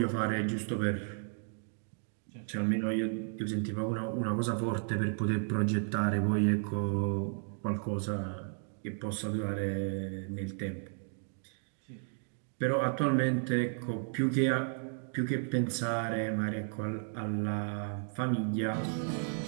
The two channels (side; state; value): left; silent; 55 dB below the other